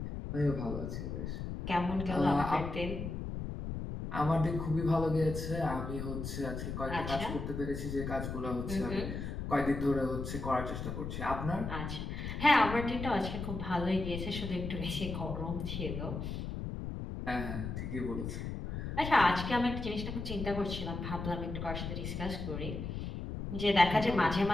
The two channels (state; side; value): noise; left; rumble, 5 dB below the sound